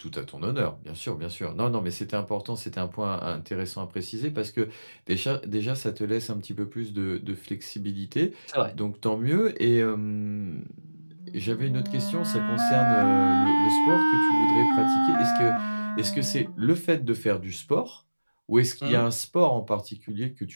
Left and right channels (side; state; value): both; inverted; correlation -1.00